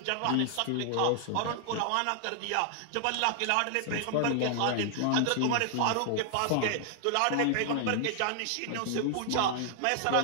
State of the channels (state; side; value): different; both; correlation 0.00